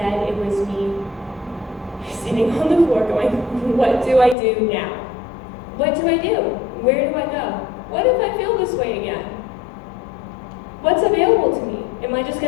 it was me sitting on the floor going, what do I do now? What do I do? Where do I go? What if I feel this way again? What's available to me? Am I just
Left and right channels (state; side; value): drops out; right; at 4.4 s